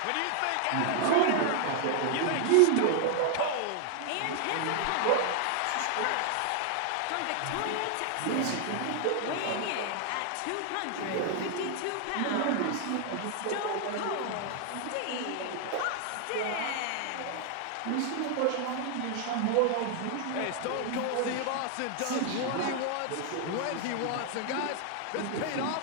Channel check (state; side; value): different; both; correlation 0.00